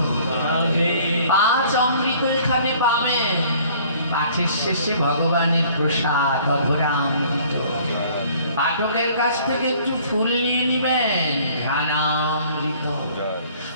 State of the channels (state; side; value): inverted; both; correlation -0.55